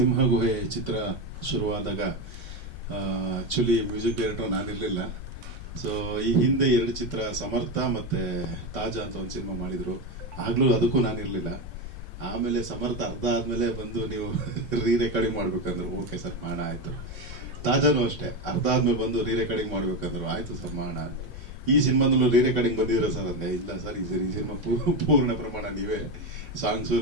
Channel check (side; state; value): left; late; 5.5 ms